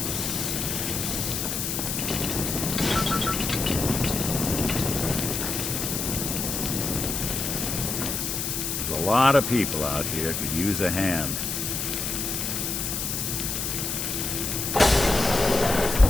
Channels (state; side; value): noise; left; hiss, 2 dB below the sound